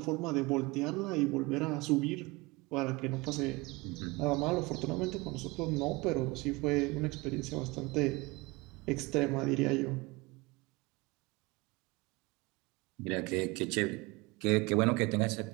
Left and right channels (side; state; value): left; quieter; 23.7 dB